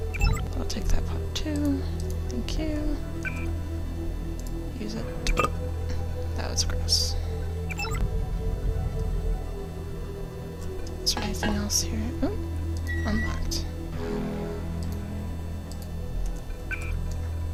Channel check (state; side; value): identical; both; correlation 1.00